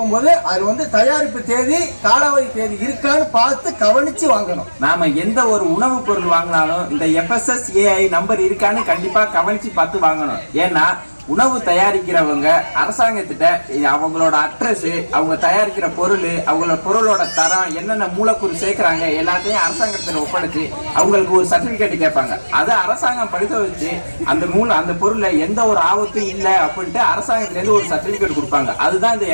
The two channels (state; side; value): inverted; both; correlation -1.00